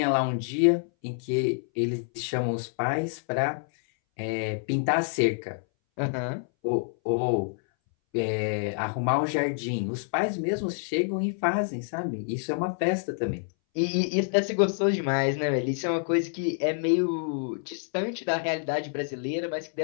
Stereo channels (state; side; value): silent; right; 60 dB below the other